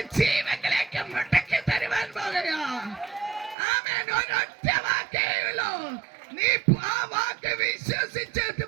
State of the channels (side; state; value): left; drops out; at 3.6 s